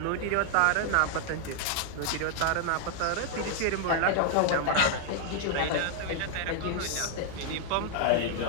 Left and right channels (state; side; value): different; both; correlation 0.00